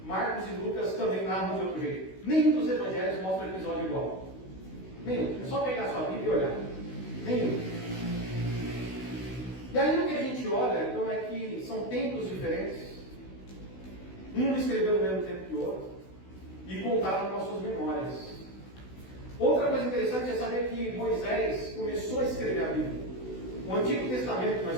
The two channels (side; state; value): right; late; 16 ms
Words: Marcos e Lucas também narram de outro jeito. Nenhum dos evangelhos mostra o episódio igual. Nenhum. É só pegar a sua Bíblia e olhar. Nenhum. E aí o que a gente olha, então, é que são tempos diferentes. Um escreveu no mesmo tempo que o outro. e contaram com as suas memórias. Outra coisa interessante é saber que Moisés começou a escrever a Bíblia. O Antigo Testamento que